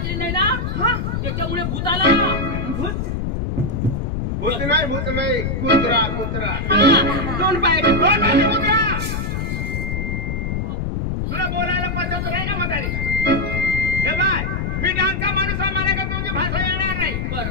नाही ना त्याच्यामुळे भूत आला भूत भूत नाही कुत्रा कुत्रा दोन पायाचे कुत्रा तुला बोलायला पद्धत नाही का म्हातारी हे बाय मी डांगचा माणूस आहे मला का तुमची भाषा येणार नाही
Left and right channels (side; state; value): left; noise; rumble, 2 dB below the sound